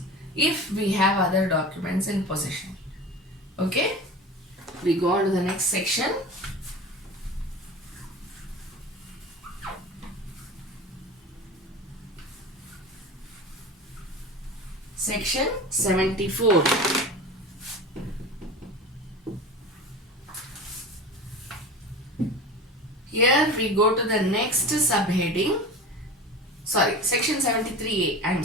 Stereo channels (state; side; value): normal; both; correlation 0.33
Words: if we have other documents in possession. Okay, we go on to the next section. Section 74. Here we go to the next subheading. Sorry, section 73A. I am